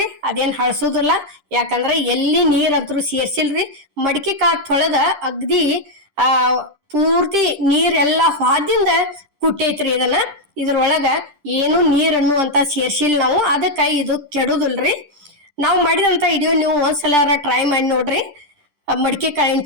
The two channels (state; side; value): late; left; 10 ms